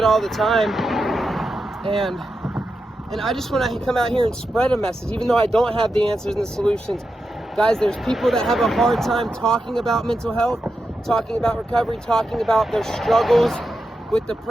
all the time. And I just want to come out here and spread a message, even though I don't have the answers and the solutions. Guys, there's people that have a hard time talking about mental health, talking about recovery, talking about their struggles with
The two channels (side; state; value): both; normal; correlation 0.88